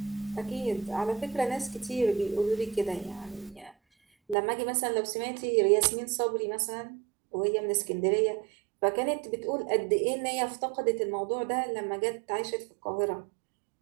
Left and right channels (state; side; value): drops out; left; at 4.4 s